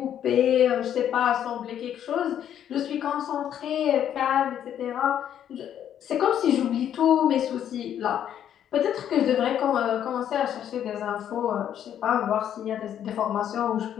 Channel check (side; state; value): right; quieter; 10.0 dB